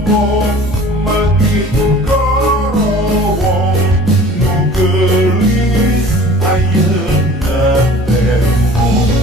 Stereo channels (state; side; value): normal; both; correlation 0.46